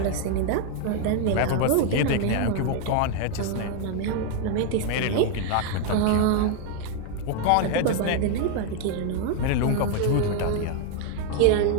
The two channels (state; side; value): different; both; correlation 0.00